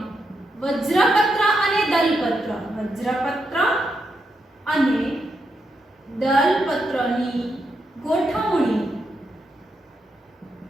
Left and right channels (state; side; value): normal; both; correlation 0.83